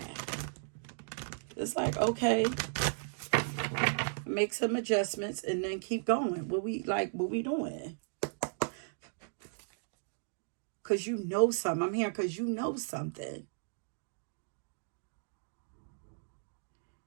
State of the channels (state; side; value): silent; left; digital silence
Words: It's like, okay, make some adjustments and then keep going. What we doing? Because you know something. I'm here because you know something.